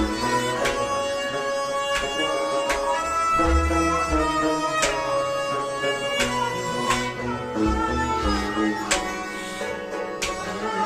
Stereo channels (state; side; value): identical; both; correlation 1.00